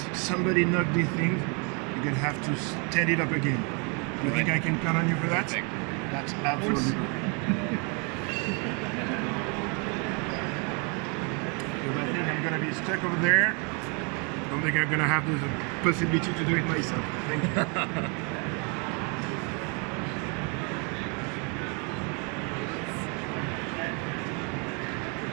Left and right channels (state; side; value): quieter; left; 34.3 dB